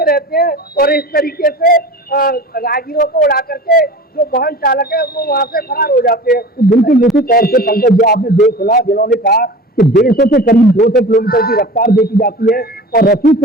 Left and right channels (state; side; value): normal; both; correlation 0.37